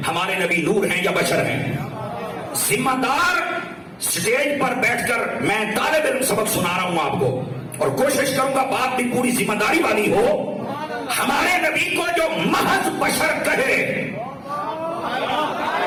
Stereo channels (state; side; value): identical; both; correlation 1.00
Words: ہمارے نبی نور ہیں یا بشر ہیں؟ ذمہ دار سٹیج پر بیٹھ کر میں طالب علم سبق سنا رہا ہوں آپ کو، اور کوشش کروں گا بات بھی پوری ذمہ داری والی ہو۔ ہمارے نبی کو جو محض بشر کہے،